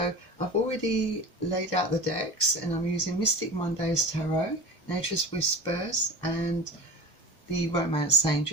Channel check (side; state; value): both; normal; correlation 0.32